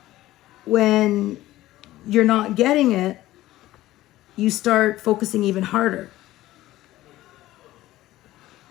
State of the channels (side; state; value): right; quieter; 15.8 dB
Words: when you're not getting it, you start focusing even harder.